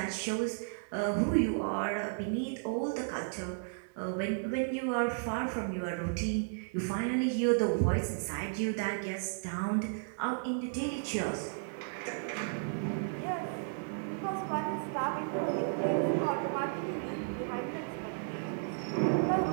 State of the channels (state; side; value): silent; left; digital silence